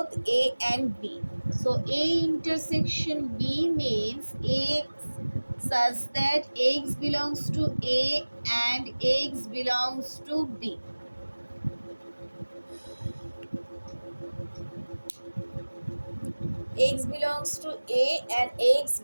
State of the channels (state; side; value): inverted; both; correlation -1.00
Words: A and B. So A intersection B means X such that X belongs to A and X belongs to B. X belongs to A and X